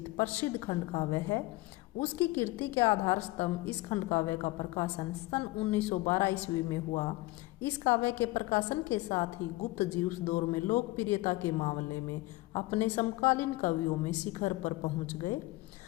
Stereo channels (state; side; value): quieter; right; 20.2 dB